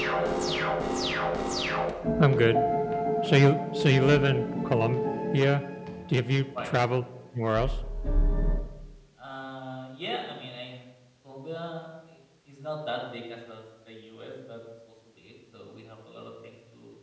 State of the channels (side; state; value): both; identical; correlation 1.00